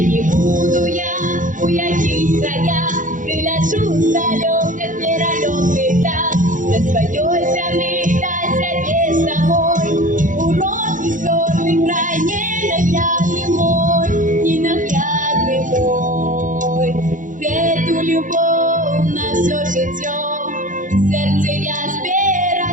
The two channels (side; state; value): left; late; 0.38 ms